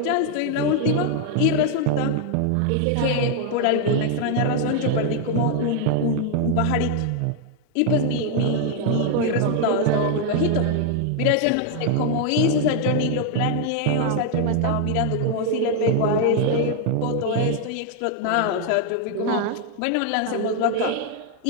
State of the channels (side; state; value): both; different; correlation 0.00